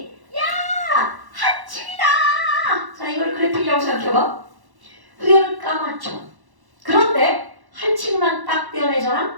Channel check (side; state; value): left; late; 1.1 ms